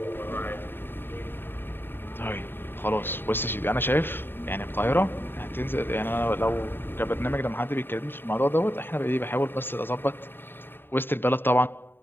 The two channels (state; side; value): late; right; 0.10 ms